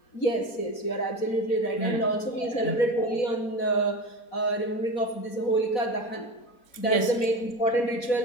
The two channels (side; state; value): right; late; 4.2 ms